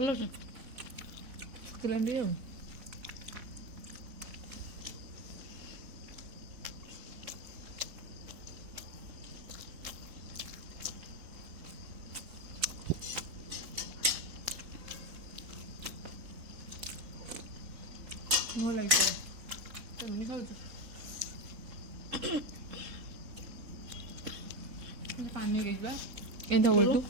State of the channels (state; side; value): late; left; 3.6 ms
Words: ଅଛି କିଲୋ ଆଉ ମୁଁ ଲାଗିପାରେ କେମିତି ଖାଉଛୁ? ପାଣି ହେଇଯିବା ଏମିତି ବୋଲୁ